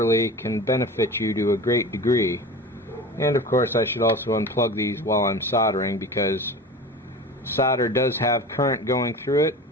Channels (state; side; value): normal; both; correlation 0.34